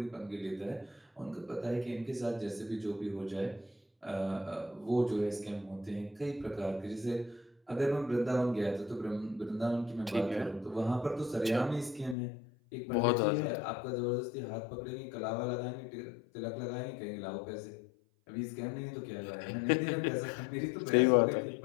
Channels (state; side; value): drops out; right; at 12.2 s